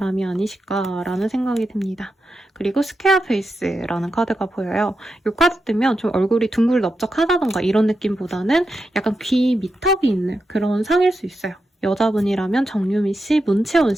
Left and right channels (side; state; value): both; normal; correlation 0.88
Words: 아니실까라는 생각이 듭니다. 그리고 스퀘어 페이스라는 카드가 보여요. 이 카드 뜨면 좀 얼굴이 둥글넓적하다던가 이런 느낌보다는 약간 귀 미턱이 있는 그런 상일 수 있어요. 여자분이라면 정유미 씨, 문채원